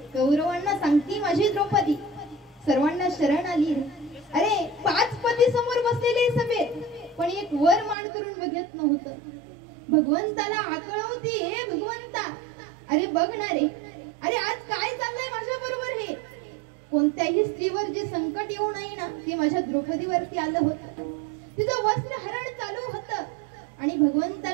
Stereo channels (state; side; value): drops out; left; at 8.0 s